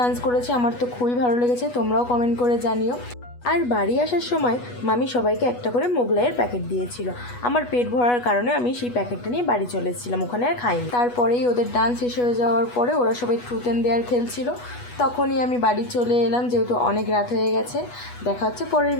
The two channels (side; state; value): right; late; 8.2 ms